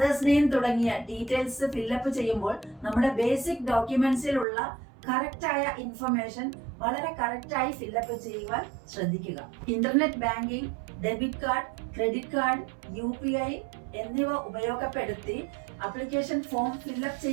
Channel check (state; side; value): drops out; left; at 4.5 s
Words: നെയിം തുടങ്ങിയ ഡീറ്റെയിൽസ് ഫില്ലപ്പ് ചെയ്യുമ്പോൾ നമ്മുടെ ബേസിക് ഡോക്യുമെന്റ്സിലുള്ള കറക്റ്റായ ഇൻഫർമേഷൻ വളരെ കറക്റ്റായി ഫില്ലപ്പ് ചെയ്യുവാൻ ശ്രദ്ധിക്കുക. Internet banking, debit card, credit card, UPI എന്നിവ ഉപയോഗപ്പെടുത്തി അപ്ലിക്കേഷൻ ഫോം ഫില്ലപ്പ്